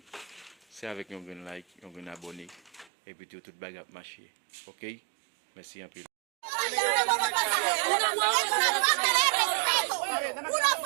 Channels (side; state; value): left; drops out; at 2.9 s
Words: C'est avec un like, un abonné. Et puis tout le bagage marcher. Ok? Merci un peu. Una